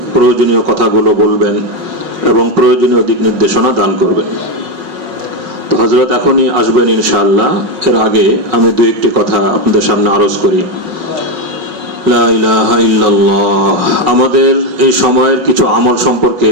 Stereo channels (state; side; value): late; left; 5.4 ms